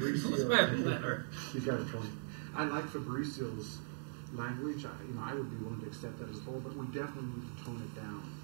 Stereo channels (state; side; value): silent; left; digital silence